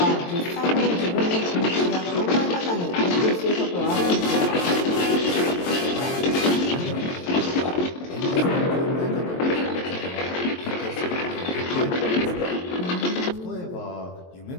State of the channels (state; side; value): late; right; 23 ms